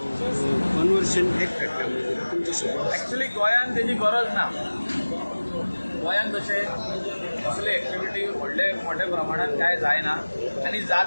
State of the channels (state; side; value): inverted; both; correlation -1.00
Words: कन्वर्शन एक्ट एक्चुली गोंयांत तेजी गरज ना गोंयांत तशें असले एक्टिविटी मोठ्या प्रमाणात काय जायना आनी